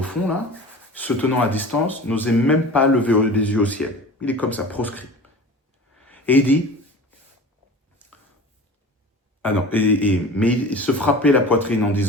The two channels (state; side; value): normal; both; correlation 0.38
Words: fond là, se tenant à distance, n'osait même pas lever les yeux au ciel. Il est comme ça, proscrit. Et il dit, mais il se frappait la poitrine en